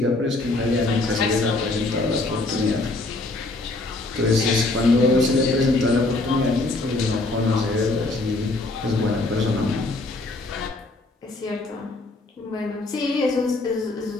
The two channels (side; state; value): right; quieter; 3.0 dB